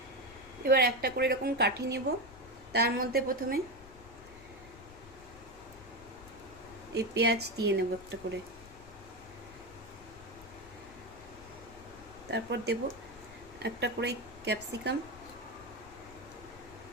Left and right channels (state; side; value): noise; left; rumble, 19 dB below the sound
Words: এবার একটা করে এরকম কাঠি নেব, তার মধ্যে প্রথমে এই পেঁয়াজ দিয়ে নেব একটা করে, তারপর দেব একটা করে ক্যাপসিকাম,